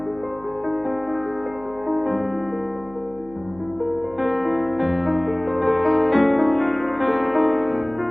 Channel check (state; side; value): noise; right; hum, 22 dB below the sound